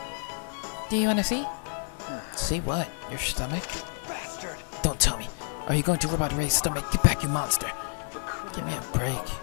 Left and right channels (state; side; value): silent; right; digital silence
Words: Do you want to see? See what? Your stomach? Bastard. Don't tell me. Are you going to rub out Ray's stomach? Get back, you monster. Give me a break.